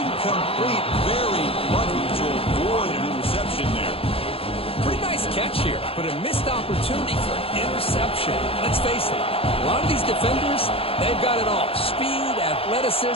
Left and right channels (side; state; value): right; late; 0.27 ms